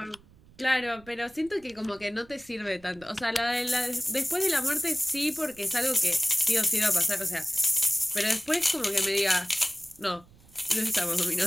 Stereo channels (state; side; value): noise; right; rumble, 26 dB below the sound